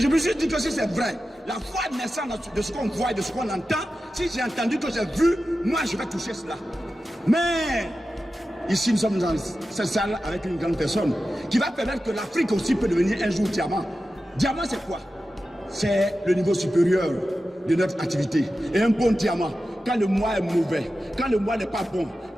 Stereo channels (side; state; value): both; normal; correlation 0.93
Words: me suis dit que si c'est vrai, la foi naissante de ce qu'on voit et de ce qu'on entend, si j'ai entendu que j'ai vu, moi je vais toucher cela. Mais ici nous sommes dans cette salle avec une grande personne qui va permettre que l'Afrique aussi peut devenir un jour diamant. Diamant c'est quoi? C'est le niveau supérieur de notre activité. Et un bon diamant, quand le mois est mauvais, quand le mois n'est pas bon,